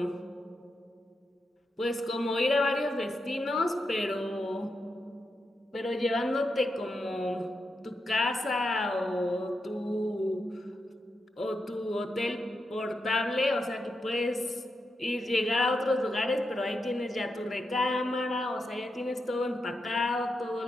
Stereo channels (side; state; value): both; normal; correlation 0.86